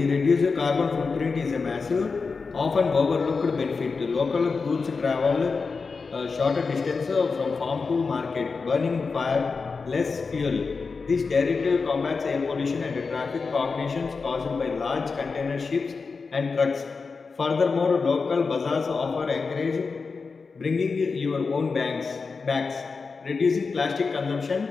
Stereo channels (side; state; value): right; quieter; 4.7 dB